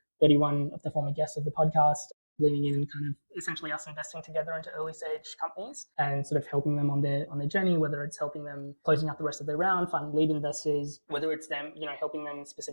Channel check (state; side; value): inverted; both; correlation -1.00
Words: of the former guests of the podcast leaning in and kind of essentially us investing together into early stage companies and sort of helping them on their journey, whether it's helping them closing out the rest of their round, finding lead investors, whether it's them, helping them